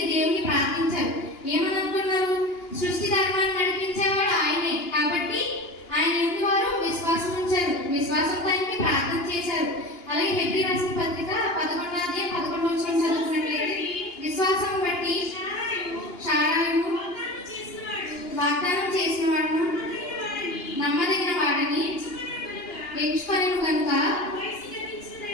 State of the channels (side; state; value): right; late; 2.9 ms